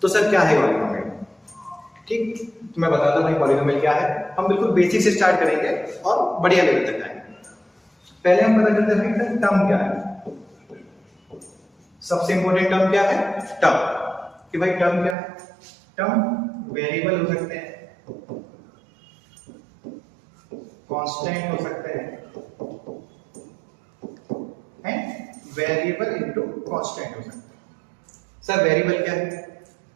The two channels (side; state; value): left; drops out; at 15.2 s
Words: तो सर क्या है पॉलिनोमियल? ठीक, तो मैं बताता हूँ भाई पॉलिनोमियल क्या है। हम बिल्कुल बेसिक से स्टार्ट करेंगे और बढ़िया लेवल तक जाएंगे। पहले हम पता करते हैं भाई टर्म क्या है। सबसे इंपॉर्टेंट टर्म क्या है? टर्म। कि भाई टर्म क्या है? टर्म वेरिएबल हो सकते हैं, कांस्टेंट हो सकते हैं, वेरिएबल इनटू कांस्टेंट हो सकता है। सर वेरिएबल क्या है?